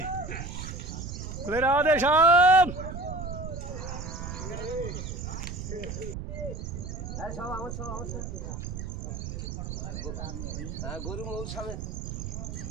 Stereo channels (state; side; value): noise; right; rumble, 6 dB below the sound